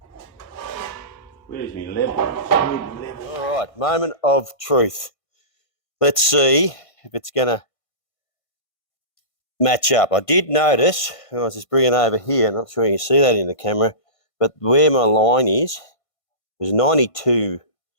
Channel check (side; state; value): right; late; 1.5 ms